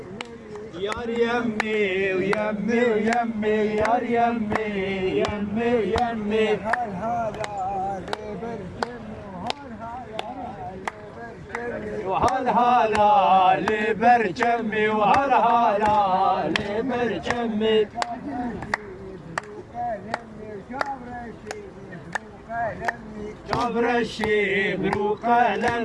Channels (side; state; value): both; identical; correlation 1.00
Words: يار يمي ويمي ويمي يار يمي يمي يمي وهل هلا لبرجمي وهل هلا لبرجمي جبر الشيب رو